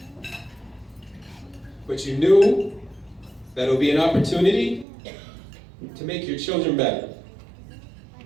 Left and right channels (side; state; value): left; drops out; at 4.9 s